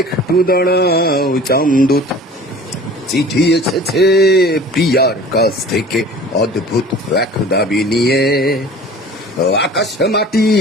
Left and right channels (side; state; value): both; normal; correlation 0.43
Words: একটু দাঁড়াও চামদূত। চিঠি এসেছে প্রিয়ার কাছ থেকে অদ্ভুত এক দাবি নিয়ে। আকাশ মাটি